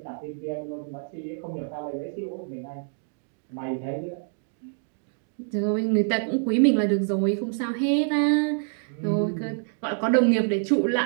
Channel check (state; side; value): silent; left; digital silence